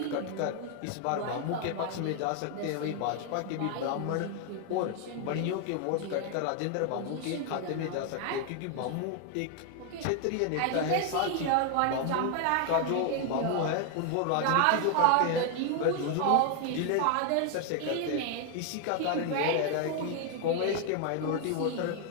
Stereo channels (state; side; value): different; both; correlation 0.00